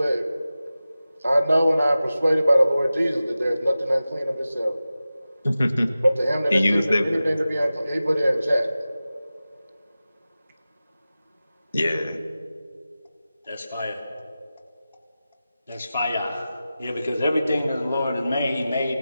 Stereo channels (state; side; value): inverted; both; correlation -0.95